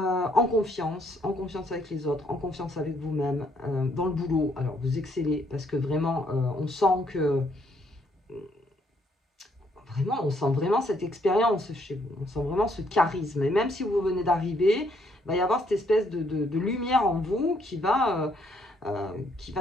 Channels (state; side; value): normal; both; correlation 0.70